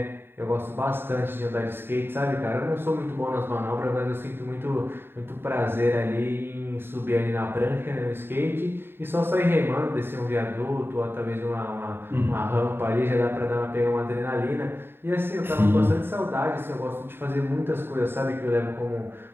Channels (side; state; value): left; late; 0.11 ms